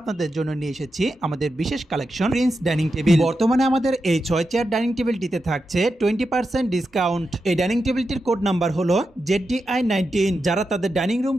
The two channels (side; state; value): both; normal; correlation 0.88